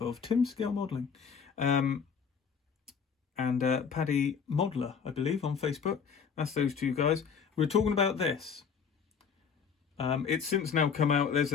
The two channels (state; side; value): quieter; right; 6.5 dB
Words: Tim Scale Modelling. And Paddy Modeler, I believe, on Facebook. That's those two guys. We were talking about this. It's since now come out. There's